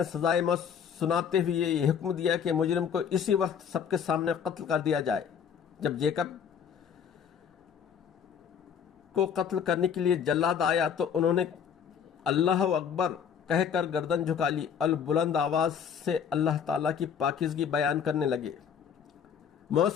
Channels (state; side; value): quieter; right; 7.6 dB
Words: سزائے موت سناتے ہوئے یہ حکم دیا کہ مجرم کو اسی وقت سب کے سامنے قتل کر دیا جائے۔ جب جیکب کو قتل کرنے کے لیے جلاد آیا تو انہوں نے اللہ اکبر کہہ کر گردن جھکا لی اور بلند آواز سے اللہ تعالیٰ کی پاکیزگی بیان کرنے لگے۔ موت